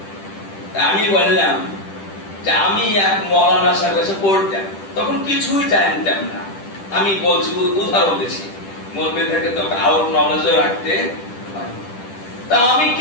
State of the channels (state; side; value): late; right; 10 ms